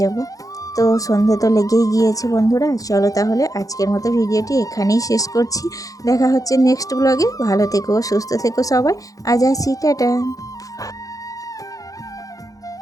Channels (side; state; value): right; late; 0.17 ms